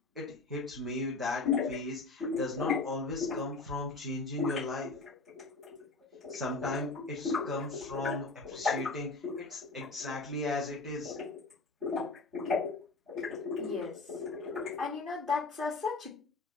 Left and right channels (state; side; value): quieter; right; 3.6 dB